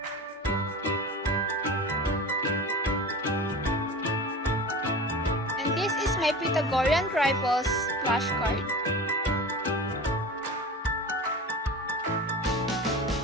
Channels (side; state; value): both; normal; correlation 0.33